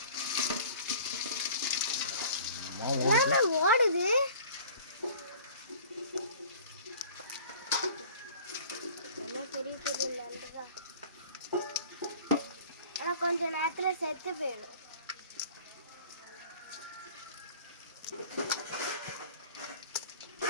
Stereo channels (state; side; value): inverted; both; correlation -0.47